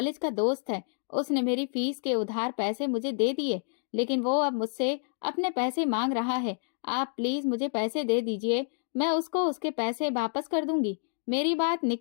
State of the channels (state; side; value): silent; right; 59 dB below the other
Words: का दोस्त है, उसने मेरी फीस के उधार पैसे मुझे दे दिए, लेकिन वो अब मुझसे अपने पैसे मांग रहा है। आप प्लीज मुझे पैसे दे दीजिए, मैं उसको उसके पैसे वापस कर दूंगी। मेरी बात